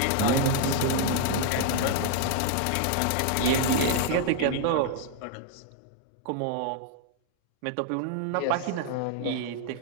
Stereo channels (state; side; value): different; both; correlation 0.00